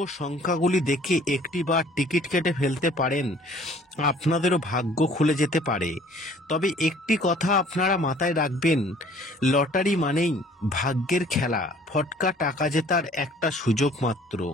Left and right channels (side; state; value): both; normal; correlation 0.54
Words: সংখ্যাগুলি দেখে একটি বার টিকিট কেটে ফেলতে পারেন, আপনাদেরও ভাগ্য খুলে যেতে পারে। তবে একটি কথা আপনারা মাথায় রাখবেন, লটারি মানেই ভাগ্যের খেলা, ফটকা টাকা জেতার একটা সুযোগ মাত্র।